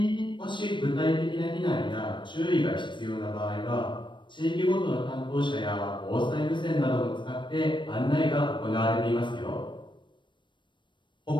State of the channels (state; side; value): late; right; 0.23 ms